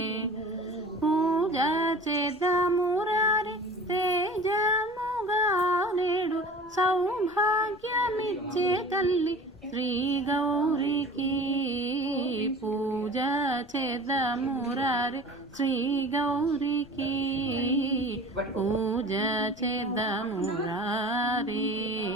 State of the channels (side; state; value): left; noise; rumble, 25 dB below the sound